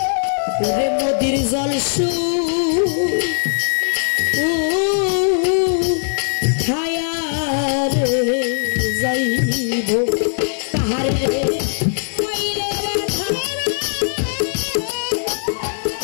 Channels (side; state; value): right; silent; digital silence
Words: রে নদীর জল